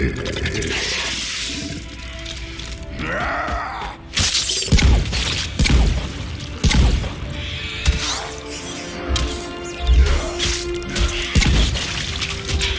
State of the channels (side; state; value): both; identical; correlation 1.00